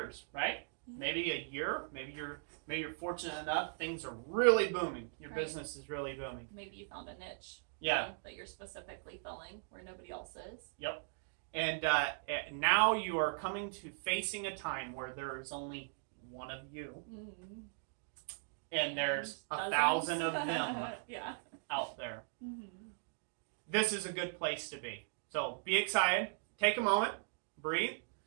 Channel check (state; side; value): silent; left; digital silence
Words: right? Maybe a year, maybe you're fortunate enough, things are really booming. Your business is really booming. Maybe you found a niche that you're specifically filling where nobody else is. Yep. And now you are coming to facing a time where there is only one of you. Mm-hmm. And there's 1,000 of them out there. Mm-hmm. This is a good place to be. So be excited. Take a moment. Breathe.